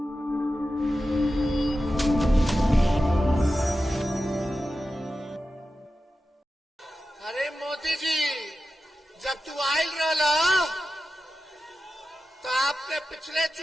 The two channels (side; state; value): both; normal; correlation 0.93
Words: अरे मोदी जी, जब तू आयल रहा तो आपने पिछले